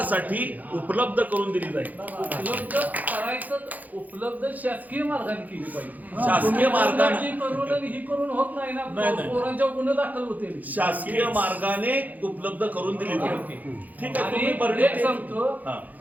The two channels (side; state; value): left; late; 0.081 ms